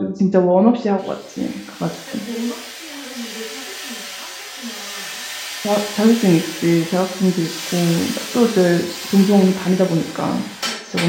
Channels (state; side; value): identical; both; correlation 1.00